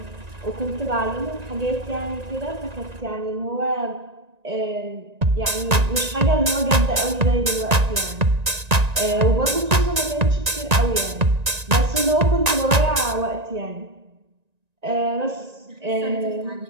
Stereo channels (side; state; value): left; late; 1.9 ms